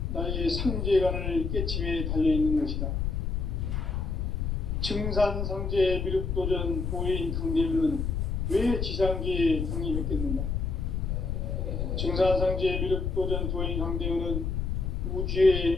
나의 상제관을 깨침에 달려있는 것이다. 증산상제 미륵도전 도인 강대우는 왜 지상계에 강림했겠는가? 증산상제 미륵도전 도인 강대우는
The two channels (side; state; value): left; noise; rumble, 1 dB below the sound